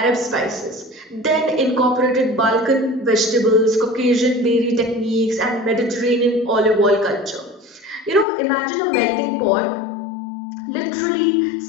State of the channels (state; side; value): drops out; right; at 8.2 s